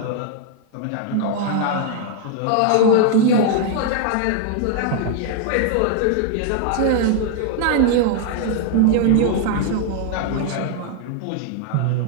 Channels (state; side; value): different; both; correlation 0.00